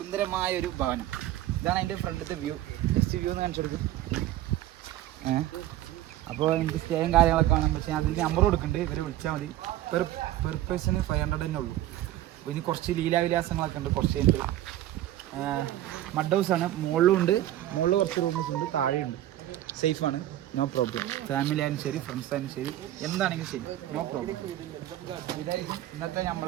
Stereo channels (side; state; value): left; quieter; 13.8 dB